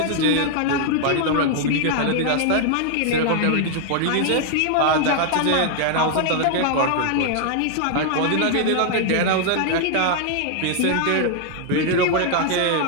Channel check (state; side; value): different; both; correlation 0.00